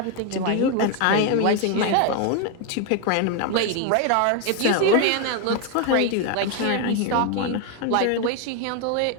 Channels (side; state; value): both; different; correlation 0.01